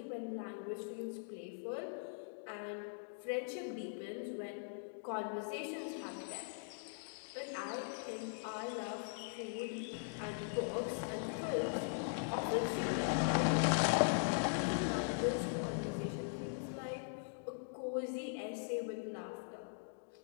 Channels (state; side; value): silent; right; digital silence